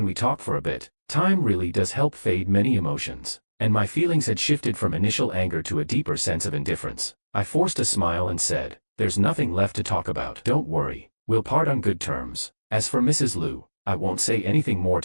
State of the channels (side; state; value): both; inverted; correlation -1.00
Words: we talk for a bit?" Time really does help fade many emotions, and my feelings had shifted from initial anger to a deeper sense of indifference. I forced a smile and said, "There's nothing left to talk about." "Don't worry, we'll part on good terms." As for Mrs. Lu, I won't say anything more